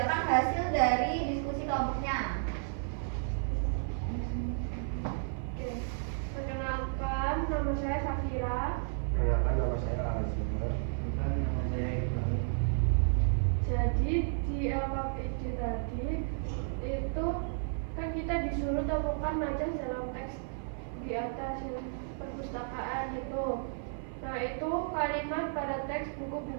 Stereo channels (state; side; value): silent; left; 56 dB below the other